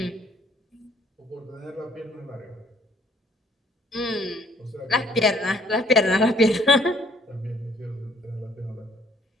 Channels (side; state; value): both; normal; correlation 0.62